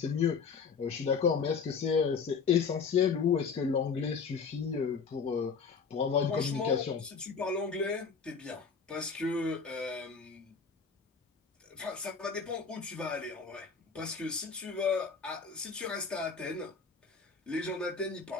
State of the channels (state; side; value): quieter; right; 5.5 dB